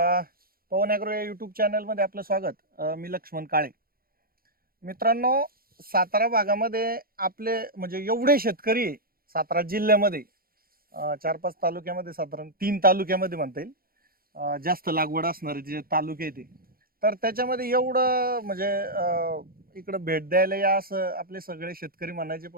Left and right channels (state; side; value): late; left; 0.43 ms